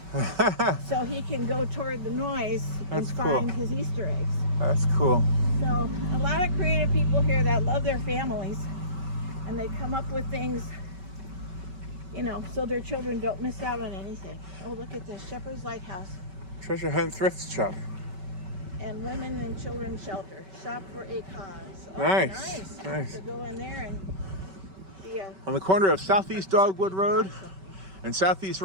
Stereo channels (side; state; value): left; late; 5.2 ms